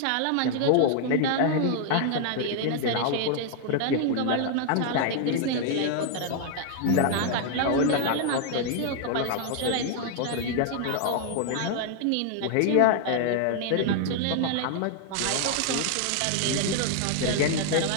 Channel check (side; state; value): both; different; correlation 0.00